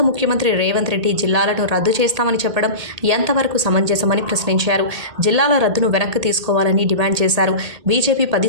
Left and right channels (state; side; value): late; left; 1.8 ms